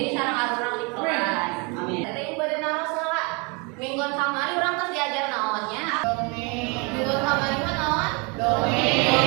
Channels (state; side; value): quieter; left; 31.1 dB